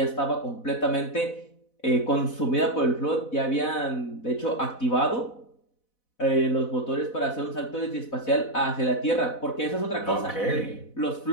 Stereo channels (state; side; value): late; right; 4.0 ms